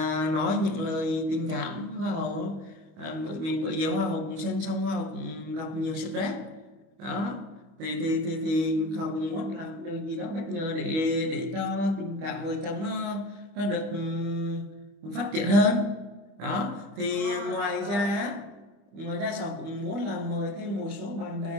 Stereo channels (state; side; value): late; left; 25 ms